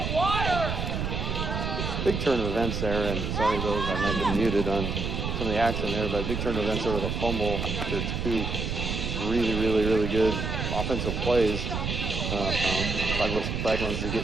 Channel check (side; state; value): right; noise; rumble, 2 dB below the sound